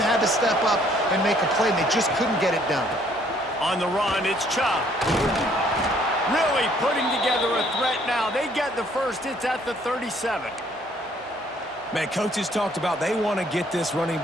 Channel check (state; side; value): normal; both; correlation 0.63